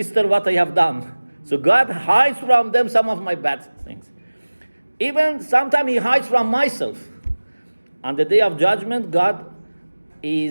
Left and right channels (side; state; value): both; inverted; correlation -1.00